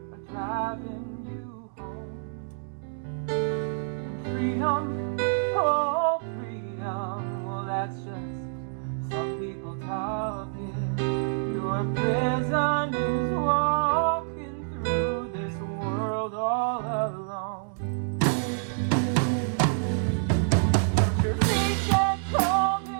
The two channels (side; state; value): left; silent; digital silence